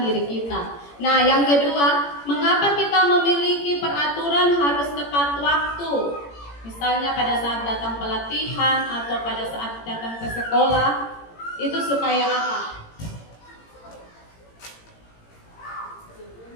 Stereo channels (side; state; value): right; late; 18 ms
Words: diri kita. Nah, yang kedua, mengapa kita memiliki peraturan harus tepat waktu? Misalnya pada saat datang pelatihan atau pada saat datang ke sekolah, itu supaya apa?